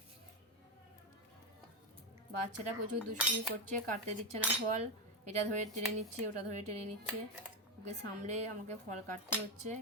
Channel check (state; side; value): normal; both; correlation 0.09